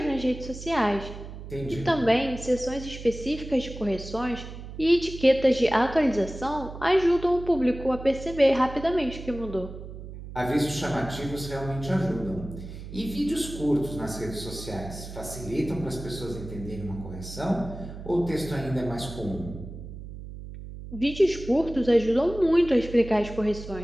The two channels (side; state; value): right; noise; hum, 12 dB below the sound